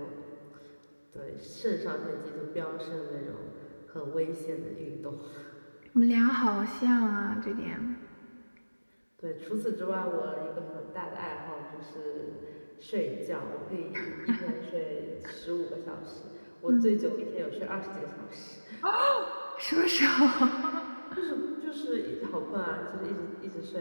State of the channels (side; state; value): both; inverted; correlation -1.00